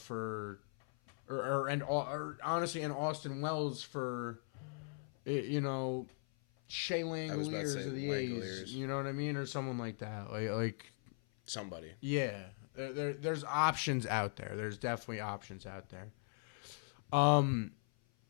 or honestly, and Austin Wells for, Shea Langoliers of the A's. You know what I mean, or someone like that, like somebody. Yeah, there's options out there. There's definitely options out there. I mean,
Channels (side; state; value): right; silent; 52 dB below the other